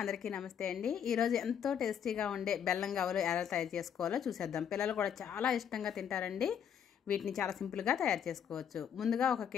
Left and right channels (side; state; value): right; quieter; 8.4 dB